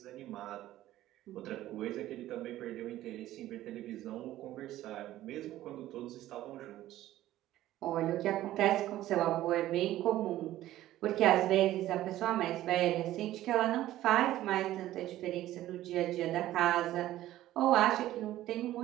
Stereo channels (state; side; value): quieter; left; 14.4 dB